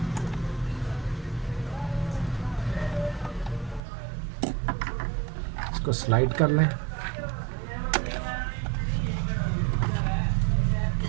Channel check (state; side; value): drops out; left; at 3.8 s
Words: इसको स्लाइड कर लें।